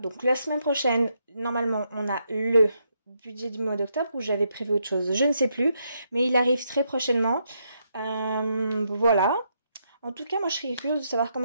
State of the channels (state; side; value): inverted; both; correlation -0.78